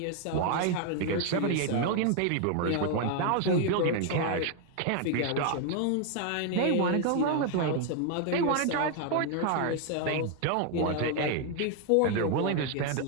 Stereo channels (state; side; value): different; both; correlation 0.01